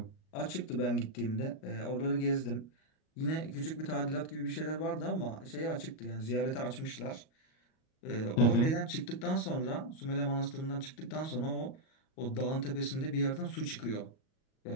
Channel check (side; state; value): right; late; 38 ms